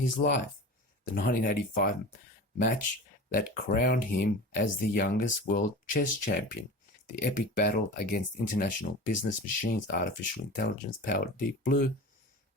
life. The 1985 match that crowned him as the youngest world chess champion, the epic battle against international business machines, artificial intelligence-powered Deep Blue,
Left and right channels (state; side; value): normal; both; correlation 0.33